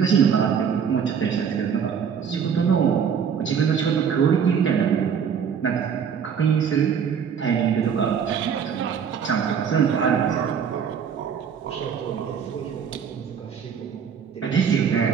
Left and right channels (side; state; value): left; quieter; 7.2 dB